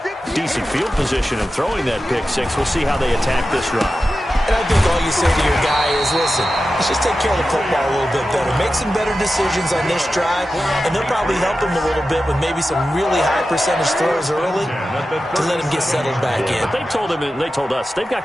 decent field position in throwing that pick six. We'll see how they attack this drive. And I think all you say to your guy is, listen, let's just take care of the football a little bit better. Make some better decisions on this drive, and they'll probably help him a little bit with maybe some really high percentage throws early to let him get settled back in. But they told him, and they told us, they've got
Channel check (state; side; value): normal; both; correlation 0.93